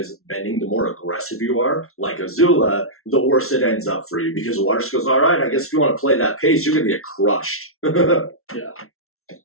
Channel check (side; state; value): right; late; 0.62 ms